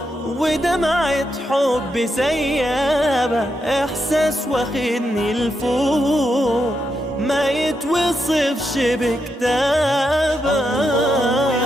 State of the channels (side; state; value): both; normal; correlation 0.83